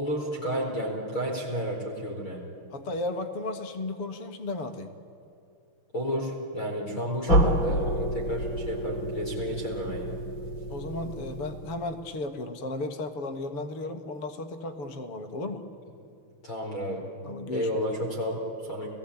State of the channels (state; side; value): late; right; 6.4 ms